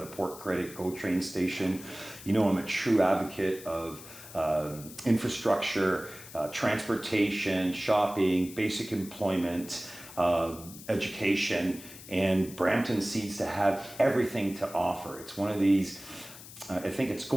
Port Credit GO train station. You know, I'm a true advocate of infrastructure, transportation, shopping, basic employment, education, and Brampton seems to have everything to offer. It's one of these, I think it's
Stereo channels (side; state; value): left; noise; hiss, 16 dB below the sound